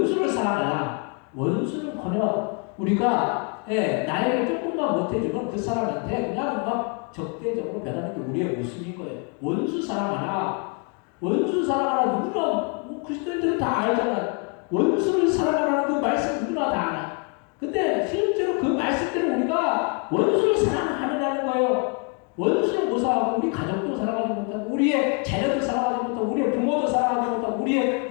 사랑하라. 원수는커녕 우리가 나에게 조금만 못해주면 그 사람한테 그냥 막 적대적으로 변하는 게 우리의 모습인 거예요. 원수 사랑하라. 원수 사랑하라. 누구나 그리스도인들은 다 알잖아. 원수를 사랑하라는 그 말씀 누구나 다 알아. 근데 실제로 그 말씀대로 우리가 원수를 사랑하느냐는 거예요. 원수를 못 사랑하고 우리 가족도 사랑하지 못하고 우리의 자녀도 사랑하지 못하고 우리의 부모도 사랑하지 못하고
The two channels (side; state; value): right; quieter; 36.6 dB